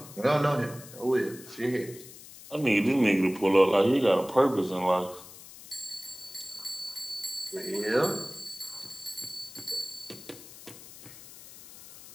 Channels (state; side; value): noise; left; hiss, 17 dB below the sound